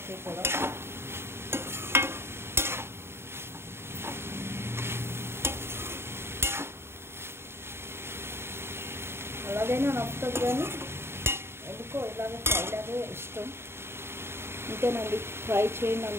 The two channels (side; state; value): left; late; 0.12 ms